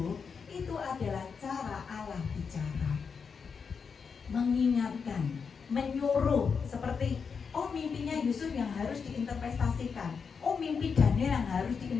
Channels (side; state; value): right; quieter; 5.9 dB